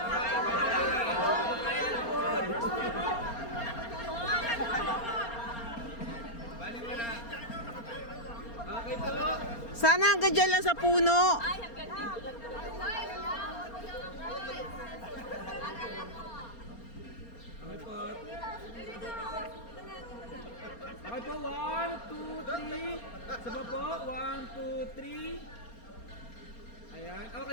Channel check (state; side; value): late; right; 4.3 ms